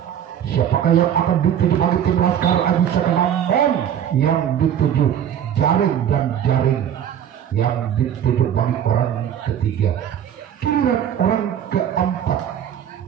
Siapakah yang akan dituju bagi tim Laskar Aji Saka, namun yang dituju jaring dan jaring yang dituju bagi orang ketiga. Giliran orang keempat.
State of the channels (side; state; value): left; quieter; 9.6 dB